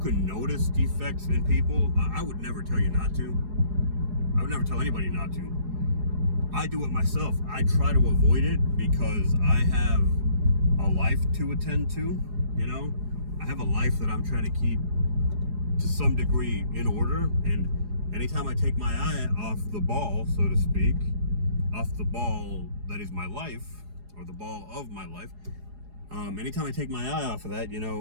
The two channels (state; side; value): late; left; 4.8 ms